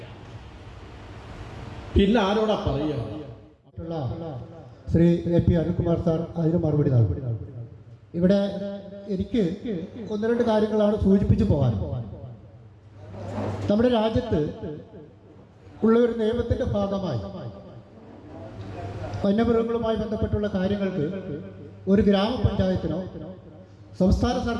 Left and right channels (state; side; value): identical; both; correlation 1.00